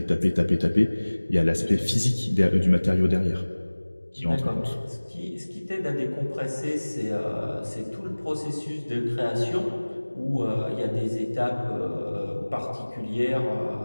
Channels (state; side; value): inverted; both; correlation -1.00